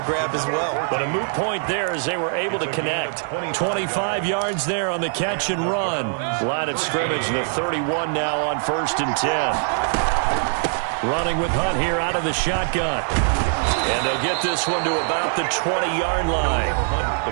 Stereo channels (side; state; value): left; silent; 64 dB below the other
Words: grab as well. But a moot point there as they were able to connect. 25 yards there on the catch and run. Line of scrimmage, the 31 now on 1st and 10. Running with Hunt here out of the shotgun. And they'll get this one to about the 20-yard line.